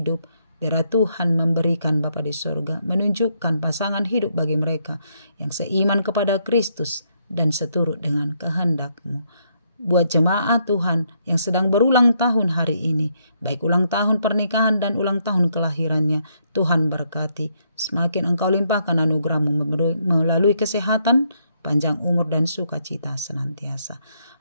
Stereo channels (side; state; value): both; inverted; correlation -0.75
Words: biarlah Tuhan memberikan Bapa di sorga, menunjukkan pasangan hidup bagi mereka yang seiman kepada Kristus dan seturut dengan kehendak-Mu. Buat jemaat Tuhan yang sedang berulang tahun hari ini, baik ulang tahun pernikahan dan ulang tahun kelahirannya, Tuhan berkati. Semakin Engkau limpahkan anugerah-Mu melalui kesehatan, panjang umur dan sukacita senantiasa.